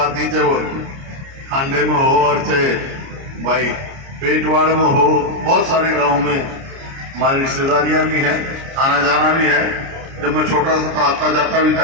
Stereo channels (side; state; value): left; late; 29 ms